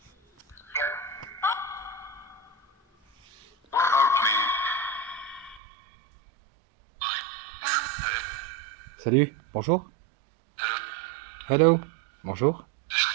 Salut, bonjour. Hello, bonjour.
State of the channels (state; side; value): drops out; left; at 5.6 s